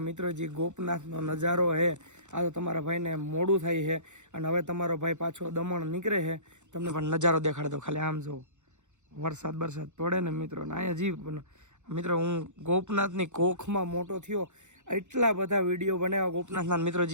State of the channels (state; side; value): late; left; 0.84 ms